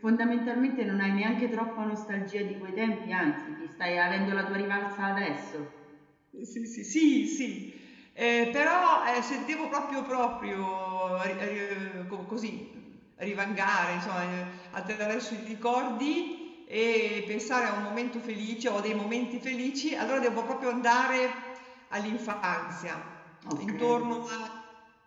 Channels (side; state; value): both; identical; correlation 1.00